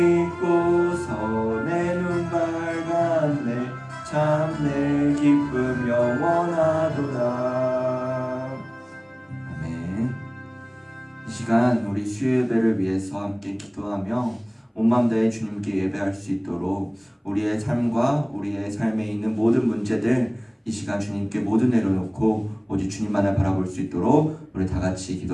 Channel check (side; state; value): both; identical; correlation 1.00